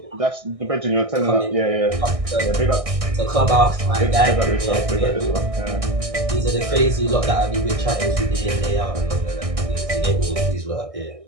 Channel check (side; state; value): left; late; 1.6 ms